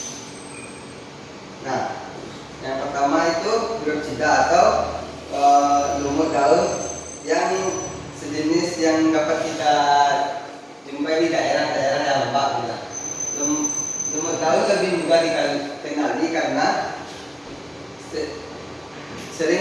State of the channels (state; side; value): identical; both; correlation 1.00